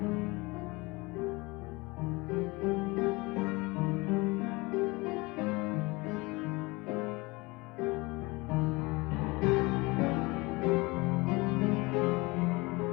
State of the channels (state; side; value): quieter; right; 24.2 dB